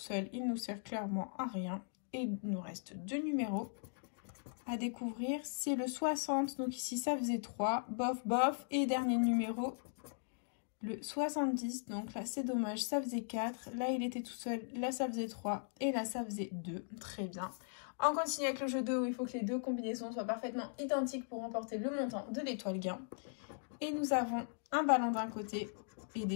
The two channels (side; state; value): right; silent; digital silence